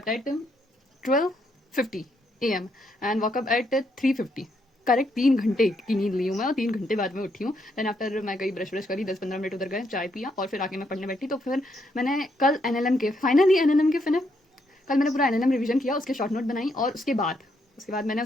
at 12:50 AM and woke up at 3:50। Correct 3 घंटे की नींद ली हूँ मैं और 3 घंटे बाद में उठी हूँ। देन आफ्टर मैं गई ब्रश करी, 10-15 मिनट उधर गए, चाय पिया और फिर आके मैं पढ़ने बैठी। तो फिर मैंने कल एनएलएम के फिर कल मैंने पूरा एनएलएम रिवीजन किया, उसके शॉर्ट नोट बनाई और उसके बाद मैंने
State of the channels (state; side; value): normal; both; correlation 0.76